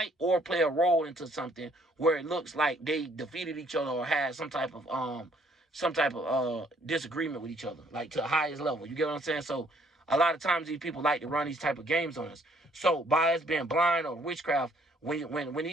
or play a role into something where it looks like they defeated each other or had some type of disagreement with each other, like to the highest level. You get what I'm saying? So a lot of times these people like to run these type of games on us. So by us being blind or witchcraft, when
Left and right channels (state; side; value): normal; both; correlation 0.64